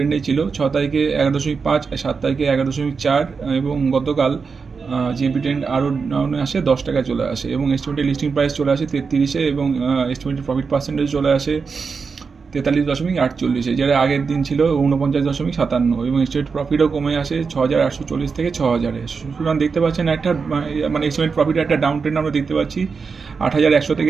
ছিল। 6 তারিখে 11.5, 7 তারিখে 11.4 এবং গতকাল জিএমপি ট্রেন্ড আরও ডাউনে আসে, 10 টাকায় চলে আসে এবং এস্টিমেটেড লিস্টিং প্রাইস চলে আসে 33-এ এবং এস্টিমেটেড প্রফিট পার্সেন্টেজ চলে আসে 43.48, যেটা আগের দিন ছিল 49.57 এবং স্টেট প্রফিটও কমে আসে 6,840 থেকে 6,000-এ। সুতরাং দেখতে পাচ্ছেন একটা মানে এস্টিমেট প্রফিটের একটা ডাউন ট্রেন্ড আমরা দেখতে পাচ্ছি 8,100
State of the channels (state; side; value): quieter; left; 5.2 dB